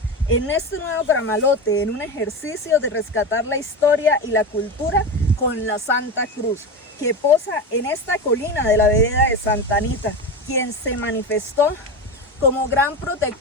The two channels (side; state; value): both; normal; correlation 0.21